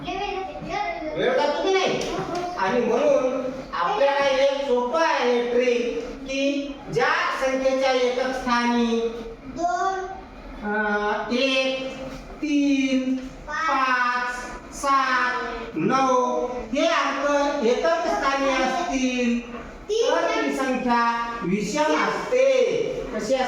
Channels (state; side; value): identical; both; correlation 1.00